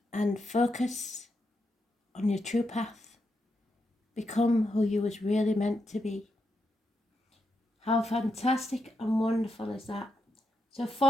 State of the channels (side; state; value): both; normal; correlation 0.83